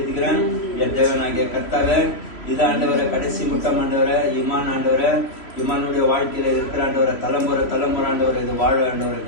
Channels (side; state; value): right; late; 3.1 ms